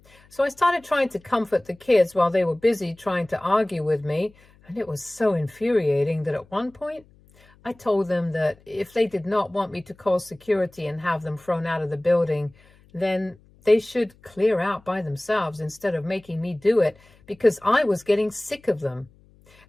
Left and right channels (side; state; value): left; noise; hum, 29 dB below the sound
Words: So I started trying to comfort the kids while they were busy trying to argue with me. And it was so infuriating that at one point, I told them that if they did not want me to call security and have them thrown out of the building, then they should clear out by themselves instead of making me do it, because I was getting sick of them.